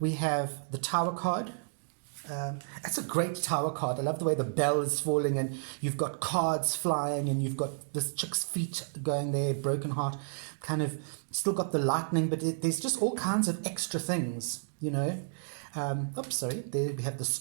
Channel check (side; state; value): left; silent; digital silence